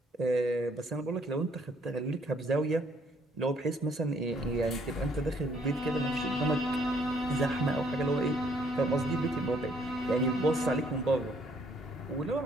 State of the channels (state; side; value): normal; both; correlation 0.65